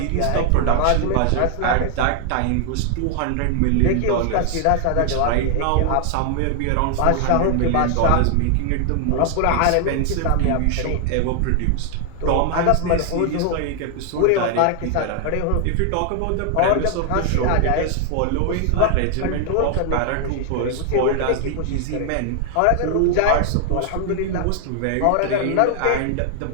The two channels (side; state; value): both; different; correlation 0.00